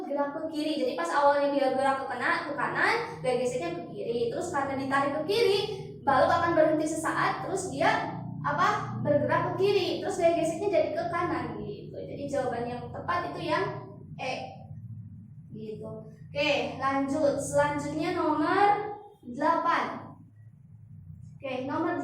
gerak ke kiri. Jadi pas awalnya dia gerak ke kanan, gaya geseknya ke kiri. Terus karena ditarik ke kiri, balok akan berhenti sesaat, terus dia bergerak ke kiri. Terus gaya geseknya jadi ke kanan gitu. Jadi jawaban yang tepat itu yang E. Gitu. Oke, lanjut. Selanjutnya nomor 8. Oke, nomor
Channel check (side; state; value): both; identical; correlation 1.00